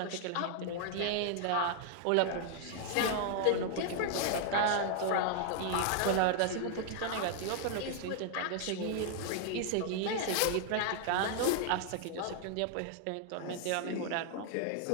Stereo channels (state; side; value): different; both; correlation 0.00